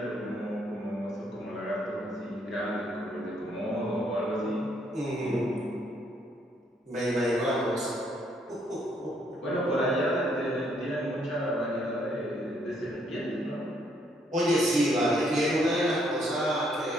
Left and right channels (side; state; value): both; normal; correlation 0.70